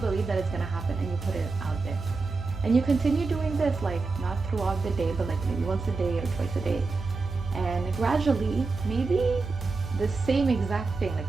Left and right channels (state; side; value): quieter; left; 4.0 dB